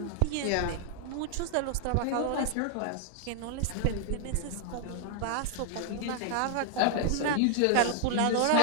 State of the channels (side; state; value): both; different; correlation 0.00